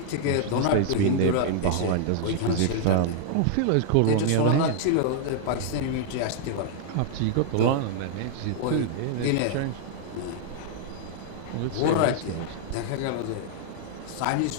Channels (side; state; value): both; different; correlation -0.01